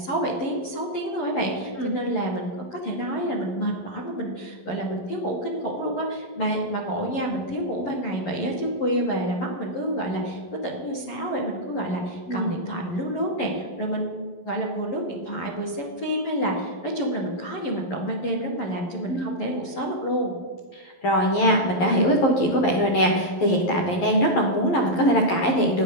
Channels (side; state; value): right; late; 11 ms